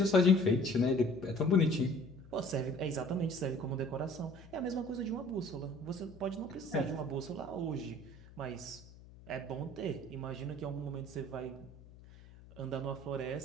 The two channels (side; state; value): left; noise; hum, 20 dB below the sound